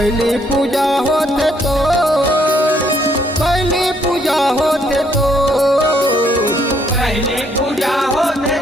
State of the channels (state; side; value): normal; both; correlation 0.69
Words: पूजा होते तो, पहली पूजा होते तो, पहली पूजा होते